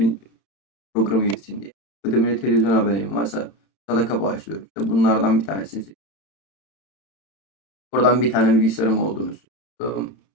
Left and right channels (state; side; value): late; right; 31 ms